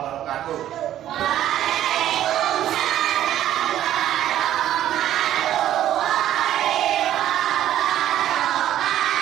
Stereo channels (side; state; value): left; quieter; 12.1 dB